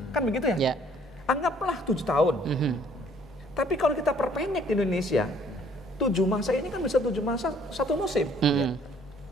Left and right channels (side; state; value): both; normal; correlation 0.60